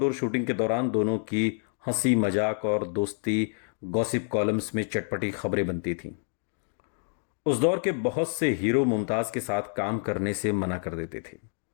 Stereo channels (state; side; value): silent; right; digital silence